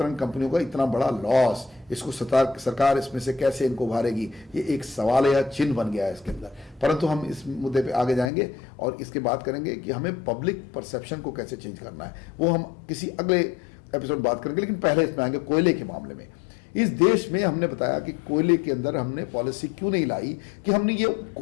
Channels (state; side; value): drops out; right; at 8.3 s